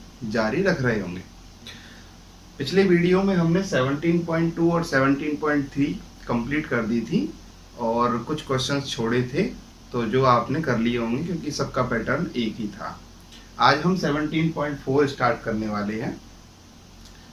जारी रख रहे होंगे। पिछले वीडियो में हमने 17.2 और 17.3 कंप्लीट कर दी थी और कुछ क्वेश्चंस छोड़े थे, तो जो आपने कर लिए होंगे क्योंकि सबका पैटर्न एक ही था। आज हम 17.4 स्टार्ट करने वाले हैं।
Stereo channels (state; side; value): identical; both; correlation 1.00